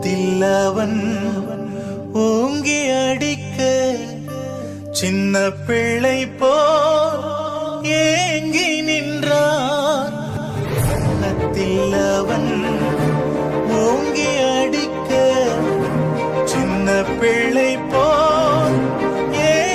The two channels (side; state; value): both; identical; correlation 1.00